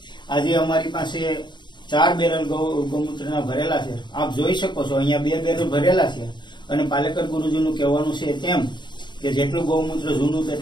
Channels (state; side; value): late; right; 0.22 ms